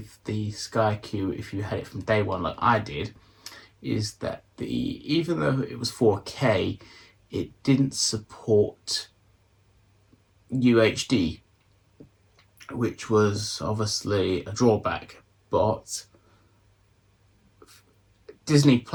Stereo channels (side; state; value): both; identical; correlation 1.00